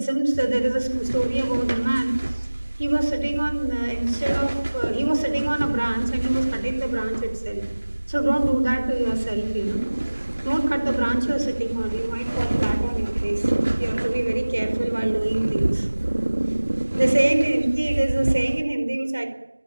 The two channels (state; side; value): inverted; both; correlation -1.00